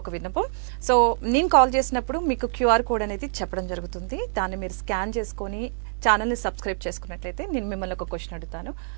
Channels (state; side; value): silent; left; digital silence